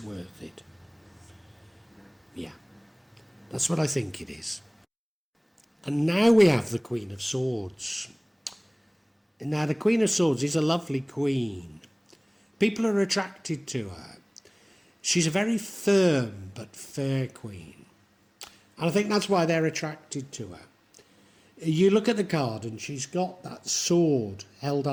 worth it. Yeah, that's what I think it is. And now we have the Queen of Swords. Now the Queen of Swords is a lovely queen. People are attracted to her. She's a very firm but fair queen. And I think that's why they're attracted to her. You look at the card and she's got that sword held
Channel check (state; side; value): identical; both; correlation 1.00